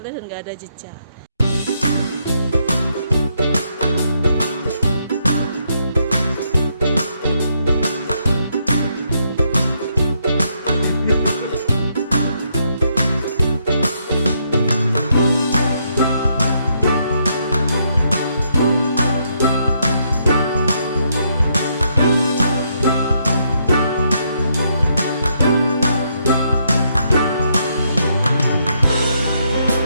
lihat dan nggak ada jejak.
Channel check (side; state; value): both; inverted; correlation -0.76